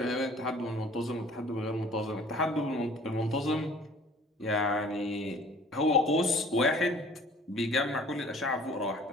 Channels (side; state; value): both; normal; correlation 0.51